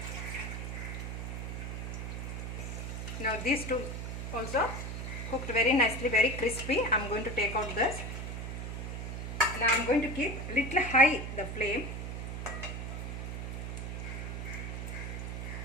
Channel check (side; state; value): right; noise; hum, 5 dB below the sound